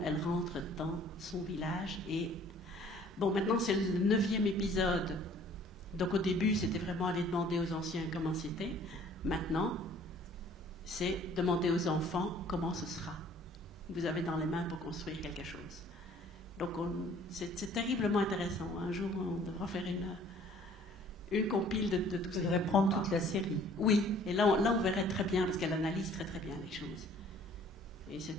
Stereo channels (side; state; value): both; normal; correlation 0.54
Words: rentre dans son village. Et bon, maintenant, c'est le 9e épisode. Donc, au début, c'était vraiment aller demander aux anciens comment c'était. Maintenant, c'est demander aux enfants comment ce sera. Vous avez dans les mains pour construire quelque chose. Donc, c'est terriblement intéressant. Un jour, on devra faire une compile de tout ça. Vous devrez prendre toute la série. Oui, et là, on verrait très bien, parce qu'elle analyse très très bien les choses. Et